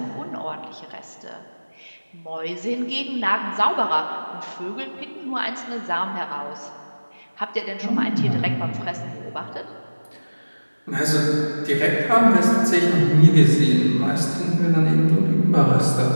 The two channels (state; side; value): inverted; both; correlation -1.00